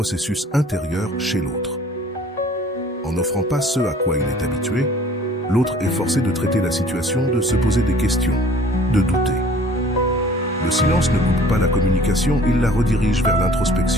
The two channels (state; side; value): normal; both; correlation 0.51